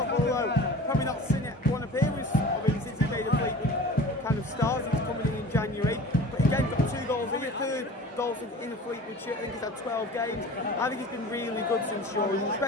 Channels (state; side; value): normal; both; correlation 0.40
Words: although probably not seen it one appearance of him since he made a Fleetwood kind of start. He's coming in January, but again got 2 goals in, 3rd goals in a Fleetwood shirt. I think he's had 12 games. I think he's been really good since joining,